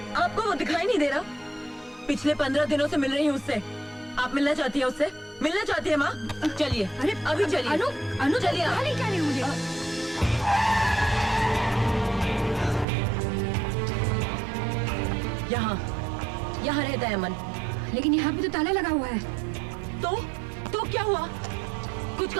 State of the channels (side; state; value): left; drops out; at 12.9 s